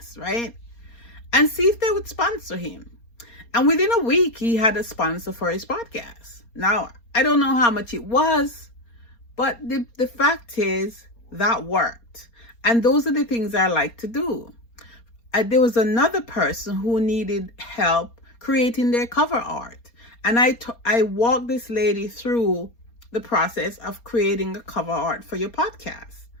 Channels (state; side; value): late; right; 4.3 ms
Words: right? And see if they would sponsor him. And within a week, he had a sponsor for his podcast. Now, I don't know how much it was, but the fact is that worked. And those are the things I like to do. There was another person who needed help creating their cover art. And I walked this lady through the process of creating a cover art for your podcast.